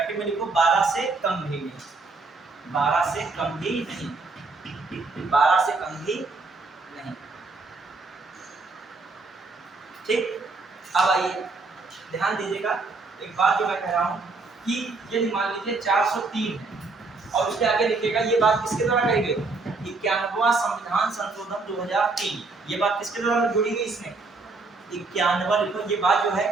में लिखो 12 से कम भी नहीं, 12 से कम भी नहीं, 12 से कम भी नहीं। ठीक, अब आइए ध्यान दीजिएगा, एक बात जो मैं कह रहा हूं कि यदि मान लीजिए 403 है और उसके आगे लिखेगा, ये बात किसके द्वारा कही गई? 91वां संविधान संशोधन 2003, ये बात किसके द्वारा जुड़ी गई? इसमें 91 लिखो, ये बात जो है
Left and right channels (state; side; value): quieter; left; 3.8 dB